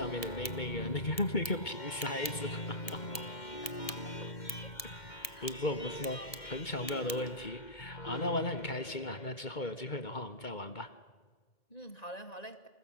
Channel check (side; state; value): right; late; 1.7 ms